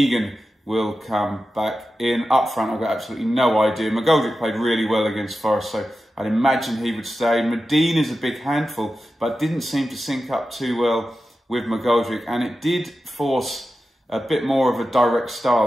will come back in. Up front, I've got absolutely no idea. McGoldrick played really well against Forest, so I'd imagine he would stay. Medine is a big handful, but didn't seem to sync up too well with McGoldrick, and it did force a bit more of a direct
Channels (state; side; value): normal; both; correlation 0.92